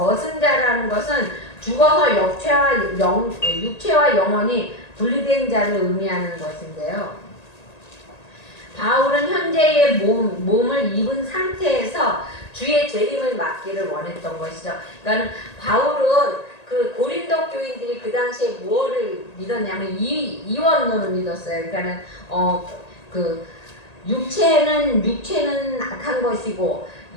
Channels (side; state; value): right; late; 1.9 ms